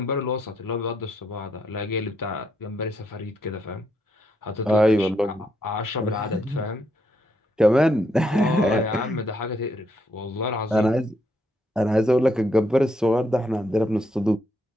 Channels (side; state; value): both; normal; correlation 0.76